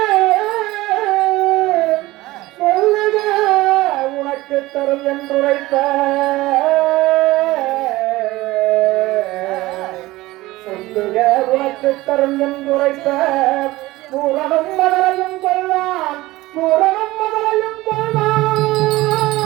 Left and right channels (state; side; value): quieter; left; 18.7 dB